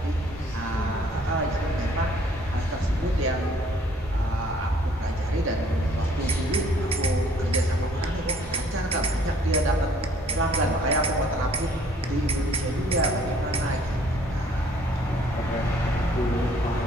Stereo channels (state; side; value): normal; both; correlation 0.59